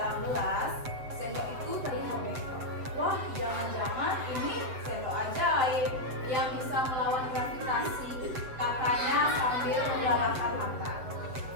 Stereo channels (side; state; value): left; late; 7.8 ms